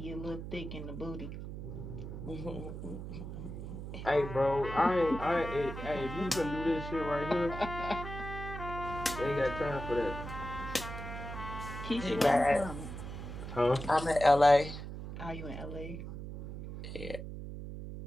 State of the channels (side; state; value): right; noise; hum, 8 dB below the sound